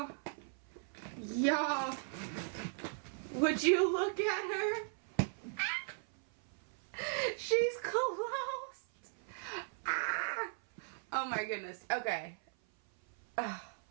Y'all, would you look at her? She's closed. Ah. Oh my goodness. Okay.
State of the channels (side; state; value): left; silent; 53 dB below the other